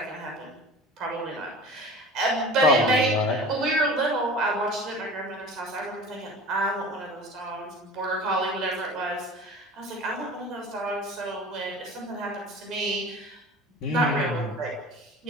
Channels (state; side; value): normal; both; correlation 0.38